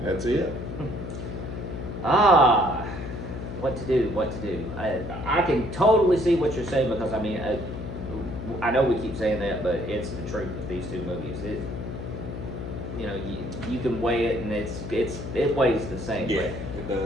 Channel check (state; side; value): noise; left; hum, 8 dB below the sound